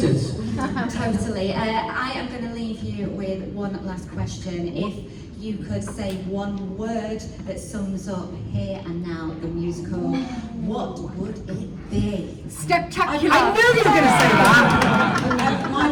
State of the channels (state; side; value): identical; both; correlation 1.00